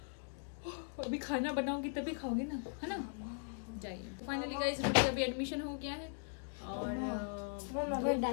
अभी खाना बनाओगी तभी खाओगे ना, है ना। जाइए। तो फाइनली गाइस अभी एडमिशन हो गया है और 2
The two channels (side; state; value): right; silent; 52 dB below the other